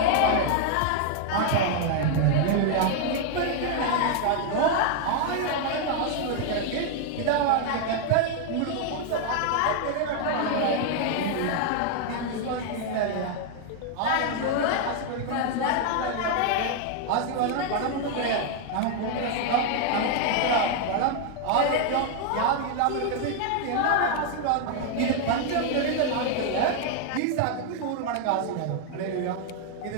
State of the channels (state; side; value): different; both; correlation 0.00